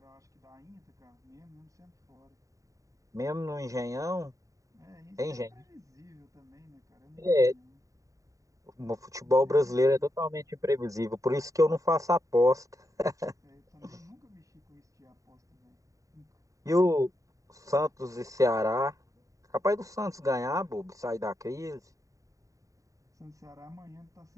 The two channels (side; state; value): left; late; 0.16 ms